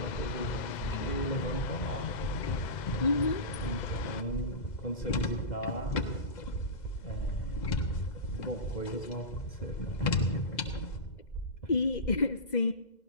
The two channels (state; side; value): late; right; 2.0 ms